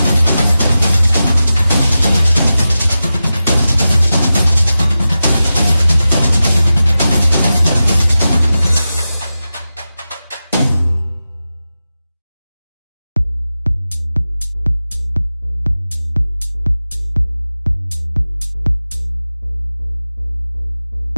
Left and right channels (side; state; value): both; inverted; correlation -0.93